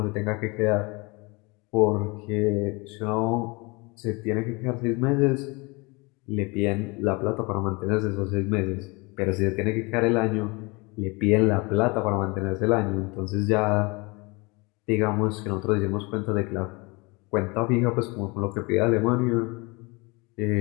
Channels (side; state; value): right; quieter; 27.0 dB